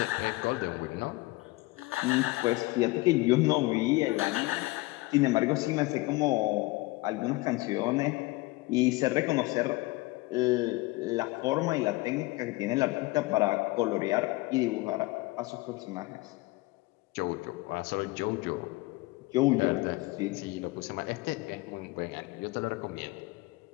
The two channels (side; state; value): right; quieter; 21.5 dB